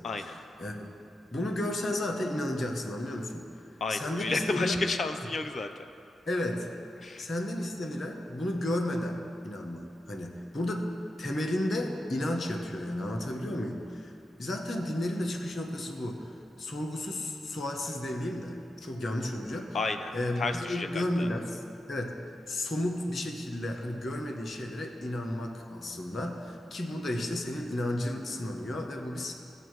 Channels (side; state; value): both; normal; correlation 0.88